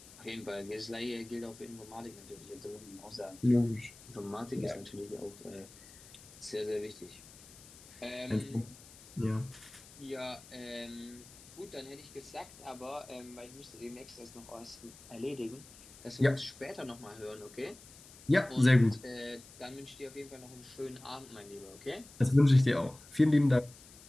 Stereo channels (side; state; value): left; noise; hiss, 20 dB below the sound